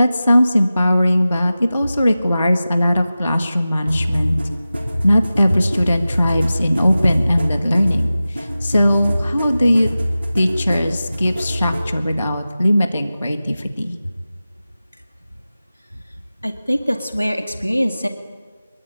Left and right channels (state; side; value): inverted; both; correlation -0.95